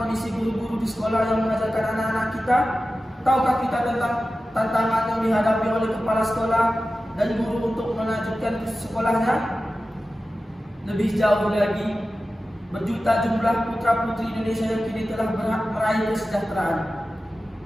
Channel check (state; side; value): normal; both; correlation 0.94